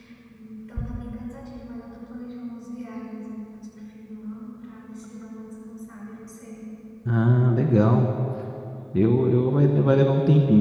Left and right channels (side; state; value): both; identical; correlation 1.00